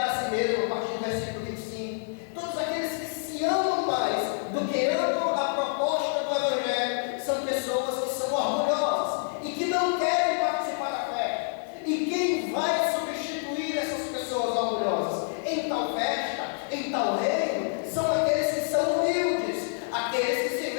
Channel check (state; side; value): silent; right; digital silence